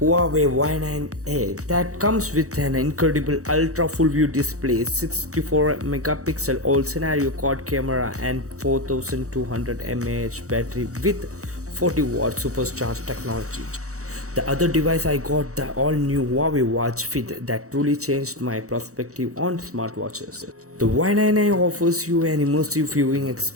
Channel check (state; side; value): late; left; 0.65 ms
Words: Y9A that comes with an incredible ultra full view display, 64 megapixel all scenario quad camera and 4200 mAh battery with 40 watt supercharged technology. The other device I got the all new Huawei Watch Fit that truly changed my perspective on smartwatches. The Y9A offers you an immersive viewing